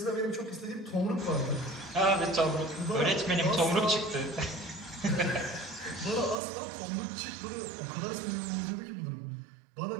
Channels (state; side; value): drops out; left; at 6.4 s